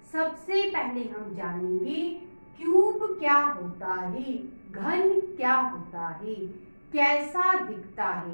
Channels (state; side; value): inverted; both; correlation -1.00